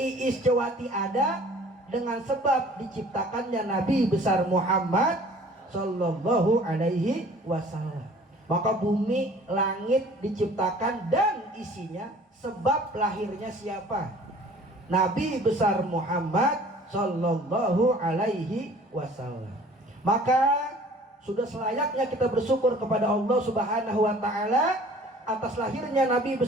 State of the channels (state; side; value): normal; both; correlation 0.50